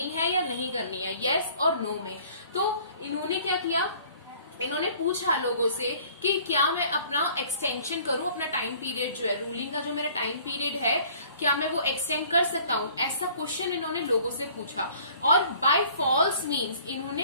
है या नहीं करनी है, यस और नो में. तो इन्होंने क्या किया? इन्होंने पूछा लोगों से कि क्या मैं अपना एक्सटेंशन करूं, अपना टाइम पीरियड जो है, रूलिंग का जो मेरा टाइम पीरियड है, क्या मैं वो एक्सटेंड कर सकता हूं? ऐसा क्वेश्चन इन्होंने लोगों से पूछा और बाय फॉल्स मींस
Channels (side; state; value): both; inverted; correlation -0.54